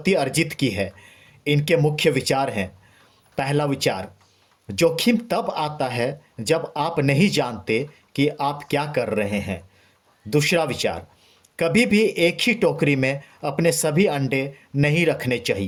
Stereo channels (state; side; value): identical; both; correlation 1.00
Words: अर्जित की है। इनके मुख्य विचार हैं। पहला विचार, जोखिम तब आता है जब आप नहीं जानते कि आप क्या कर रहे हैं। दूसरा विचार, कभी भी एक ही टोकरी में अपने सभी अंडे नहीं रखने